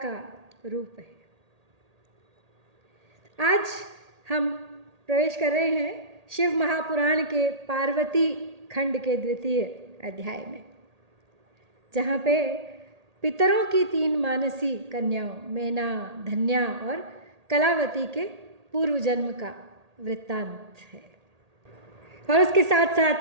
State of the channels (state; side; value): late; left; 1.8 ms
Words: रूप है? आज हम प्रवेश कर रहे हैं शिव महापुराण के पार्वती खंड के द्वितीय अध्याय में, जहाँ पे पितरों की 3 मानसी कन्याओं मैना, धन्या और कलावती के पूर्व जन्म का वृत्तांत है। और उसके साथ साथ